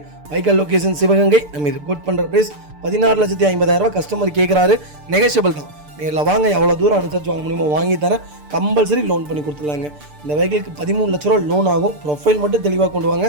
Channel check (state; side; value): late; left; 6.8 ms